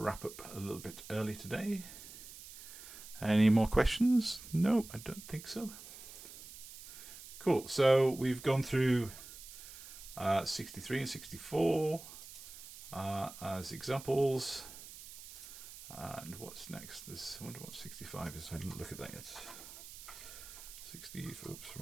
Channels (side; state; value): right; noise; hiss, 14 dB below the sound